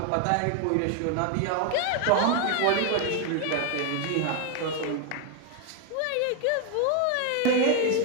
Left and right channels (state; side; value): different; both; correlation 0.01